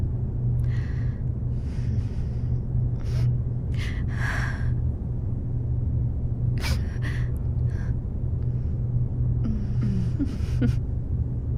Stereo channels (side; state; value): both; identical; correlation 1.00